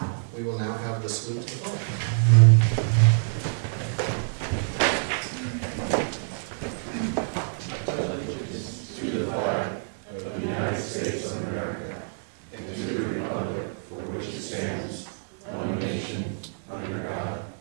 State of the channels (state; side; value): silent; left; digital silence